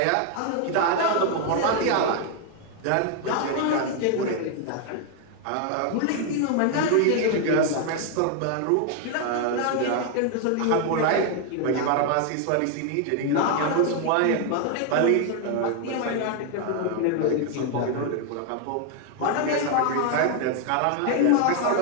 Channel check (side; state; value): both; different; correlation 0.01